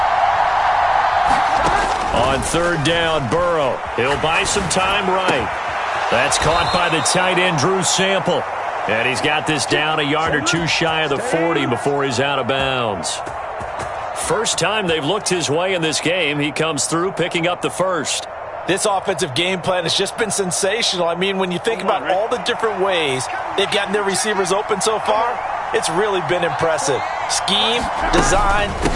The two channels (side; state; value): both; identical; correlation 1.00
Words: On 3rd down, Burrow. He'll buy some time right. That's caught by the tight end, Drew Sample. And he's got this down a yard or two shy of the 40 before he's out of bounds. First time they've looked his way in this game. He comes through picking up the first. This offensive game plan has just been sensational. I mean, when you think about all the different ways they've gotten their receivers open so far, it's really been impressive. Scheme, design,